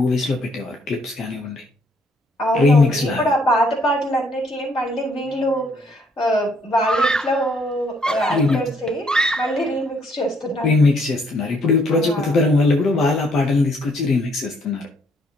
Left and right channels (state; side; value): normal; both; correlation 0.68